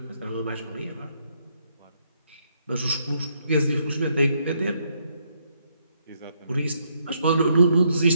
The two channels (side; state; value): both; inverted; correlation -0.74